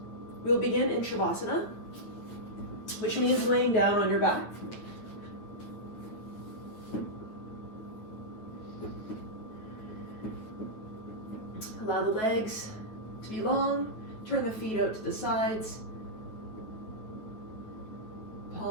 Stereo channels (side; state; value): right; late; 9.5 ms